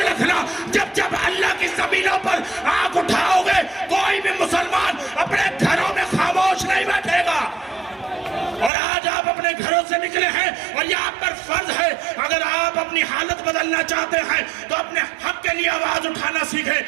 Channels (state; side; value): drops out; left; at 8.7 s